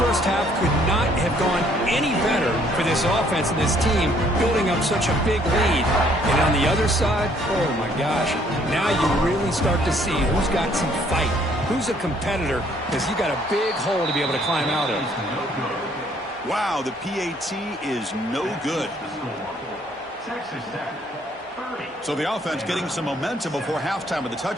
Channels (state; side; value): normal; both; correlation 0.64